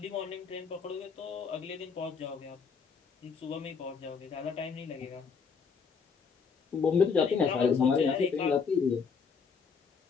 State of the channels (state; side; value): quieter; right; 5.7 dB